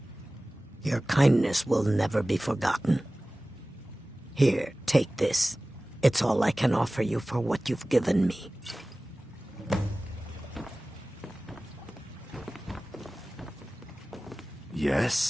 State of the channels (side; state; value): both; normal; correlation 0.97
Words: Your kindness will never be forgotten. Here, take this. It's all I can offer you for what you've given me.